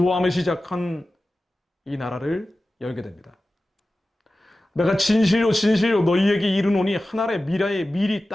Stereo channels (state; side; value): normal; both; correlation 0.95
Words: 시작한 이 나라를 열게 됩니다. 내가 진실로 너희에게 이르노니 한 알의 미라에 미리